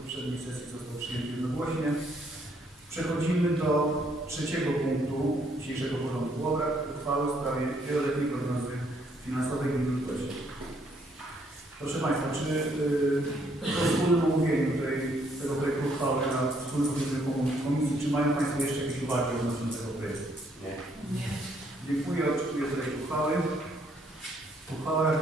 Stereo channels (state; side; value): normal; both; correlation 0.69